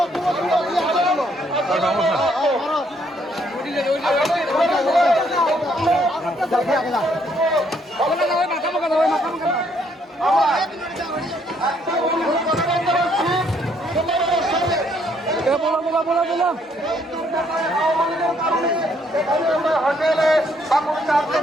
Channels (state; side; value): normal; both; correlation 0.69